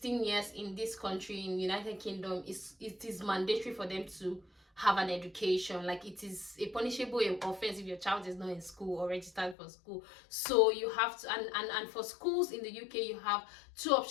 years in this country, in United Kingdom, it is mandatory for them to have an education. Like, it is a punishable offense if your child is not in school or registered for school. So you have to, and for schools in the UK, you have 2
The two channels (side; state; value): right; drops out; at 9.6 s